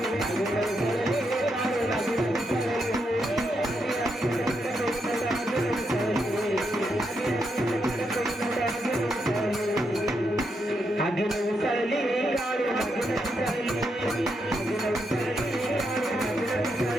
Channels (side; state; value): both; normal; correlation 0.81